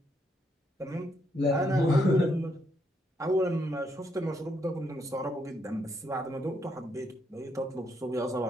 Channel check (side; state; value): both; normal; correlation 0.76